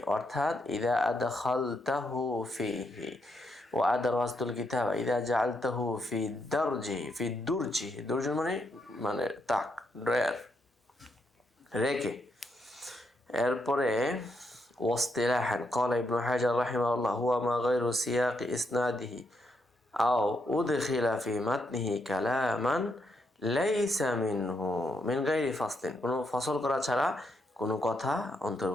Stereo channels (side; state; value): both; normal; correlation 0.79